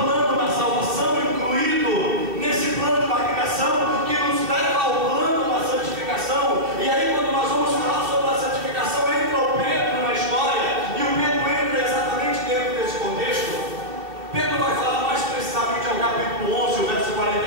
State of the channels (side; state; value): left; late; 2.7 ms